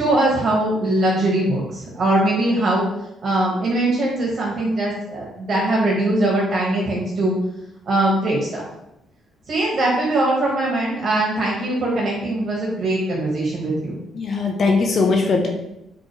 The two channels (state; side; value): normal; both; correlation 0.71